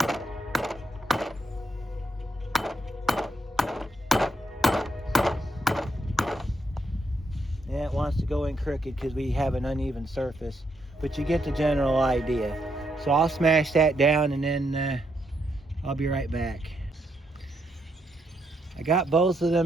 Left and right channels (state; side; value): normal; both; correlation 0.78